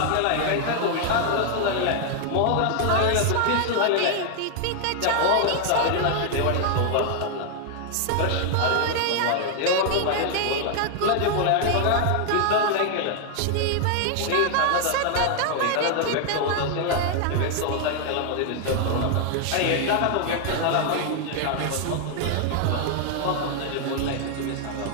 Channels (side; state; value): both; different; correlation 0.00